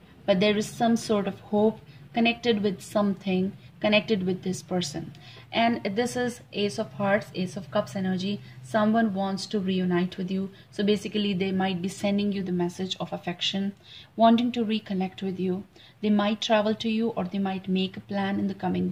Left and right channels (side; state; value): both; identical; correlation 1.00